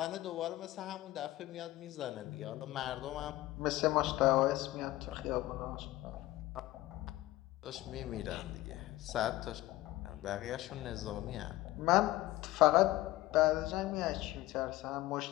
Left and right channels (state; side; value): quieter; right; 17.1 dB